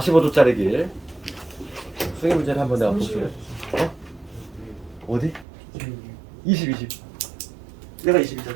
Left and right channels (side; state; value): left; drops out; at 5.5 s